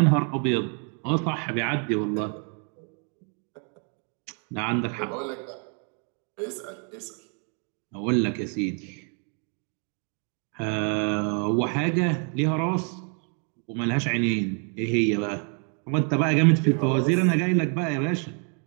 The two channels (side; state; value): left; quieter; 40.0 dB